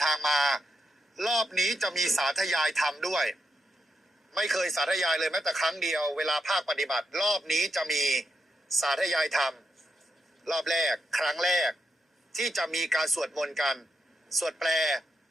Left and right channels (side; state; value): both; normal; correlation 0.84